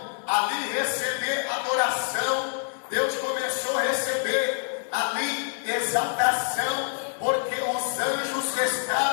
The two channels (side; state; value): right; silent; digital silence